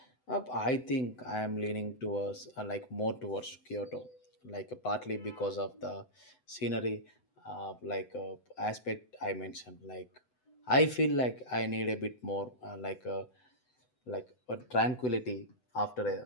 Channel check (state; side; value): late; right; 8.0 ms